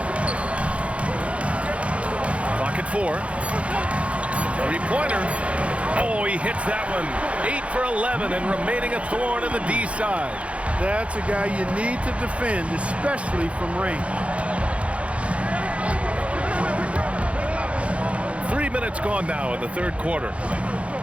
Clock at 4. 3-pointer. Oh, he hits that one. 8 for 11 and remaining a thorn in the D side. That's a guy you need to defend, especially from range. 3 minutes gone now in the third quarter.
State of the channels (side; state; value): left; late; 0.062 ms